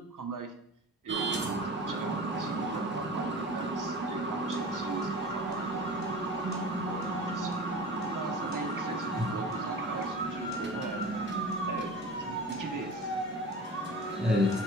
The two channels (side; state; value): both; normal; correlation 0.35